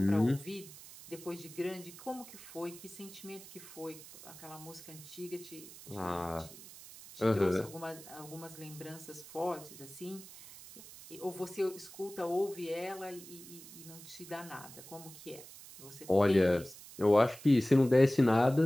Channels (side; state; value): right; noise; hiss, 17 dB below the sound